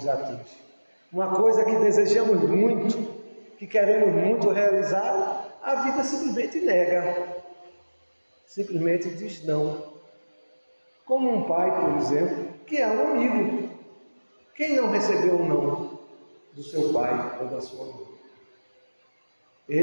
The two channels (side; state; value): both; inverted; correlation -1.00